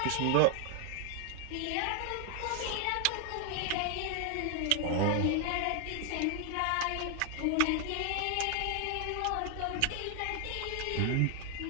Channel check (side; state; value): both; different; correlation 0.00